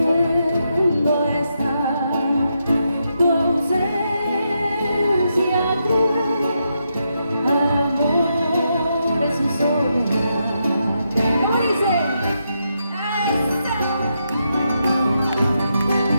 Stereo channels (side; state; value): both; inverted; correlation -0.82